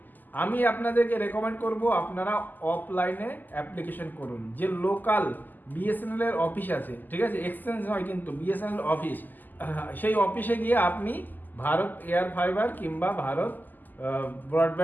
আমি আপনাদেরকে রেকমেন্ড করব আপনারা অফলাইনে অ্যাপ্লিকেশন করুন। যে লোকাল বিএসএনএল এর অফিস আছে, ঠিক আছে, এক্সচেঞ্জ নয় কিন্তু বিএসএনএল অফিস, সেই অফিসে গিয়ে আপনি ভারত এয়ার ফাইবার কিংবা ভারত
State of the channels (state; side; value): late; right; 0.086 ms